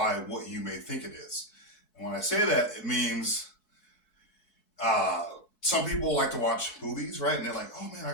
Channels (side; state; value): right; late; 4.6 ms